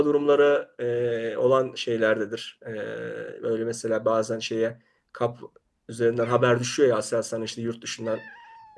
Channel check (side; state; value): both; identical; correlation 1.00